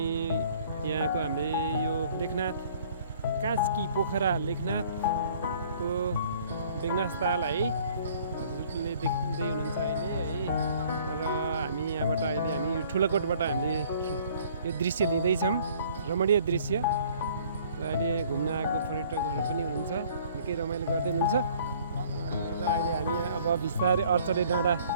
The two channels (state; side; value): inverted; both; correlation -0.56